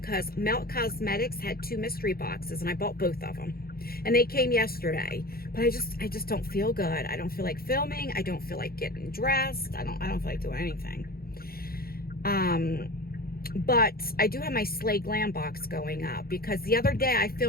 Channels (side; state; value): right; late; 0.44 ms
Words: Melt Cosmetics had 2 mystery boxes, and I bought both of them, and they came yesterday. But I just don't feel good. I don't feel like filming. I don't feel like getting dressed. I don't feel like doing anything. But I do have my Slay Glam box going up because the other day I